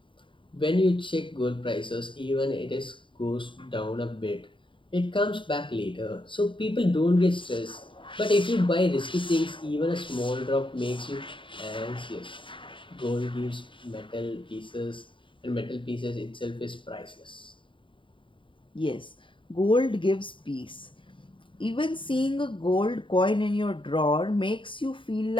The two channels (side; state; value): right; late; 0.25 ms